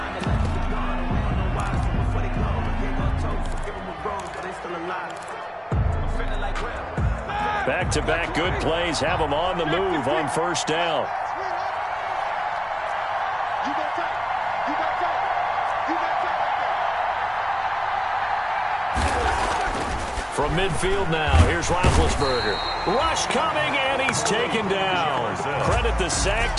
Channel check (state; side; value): identical; both; correlation 1.00